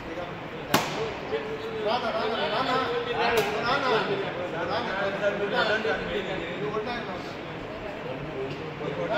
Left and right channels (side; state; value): both; identical; correlation 1.00